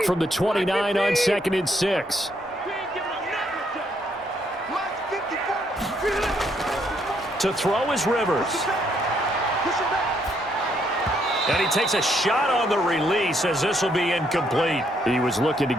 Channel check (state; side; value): normal; both; correlation 0.72